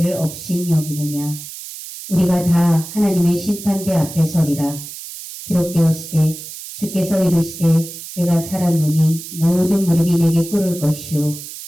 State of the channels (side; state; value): right; noise; hiss, 12 dB below the sound